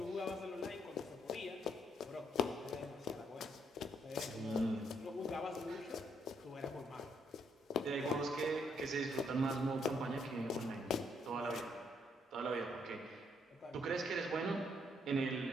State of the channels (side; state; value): both; normal; correlation 0.73